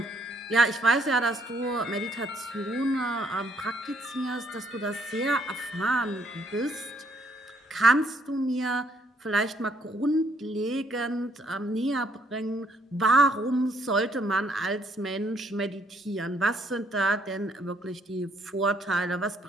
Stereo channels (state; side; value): normal; both; correlation 0.68